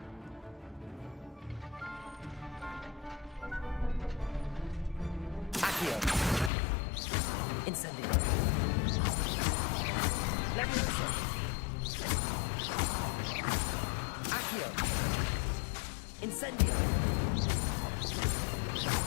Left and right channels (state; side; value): drops out; right; at 6.5 s